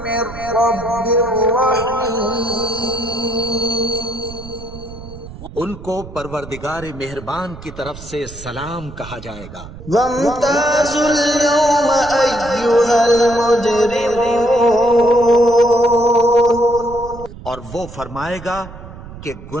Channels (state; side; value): noise; right; rumble, 15 dB below the sound